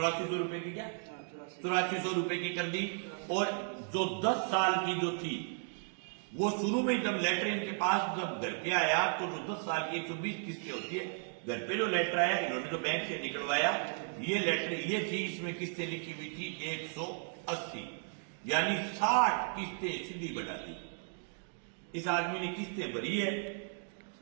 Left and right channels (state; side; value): silent; left; 54 dB below the other